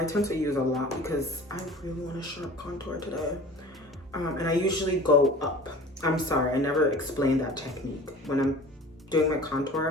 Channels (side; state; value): both; normal; correlation 0.42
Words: tend to use a lot because I really want a sharp contour today. And I usually go up. I'm sorry, I never explained that technique. When I'm doing my